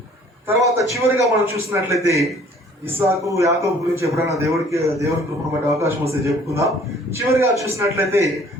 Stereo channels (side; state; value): both; normal; correlation 0.55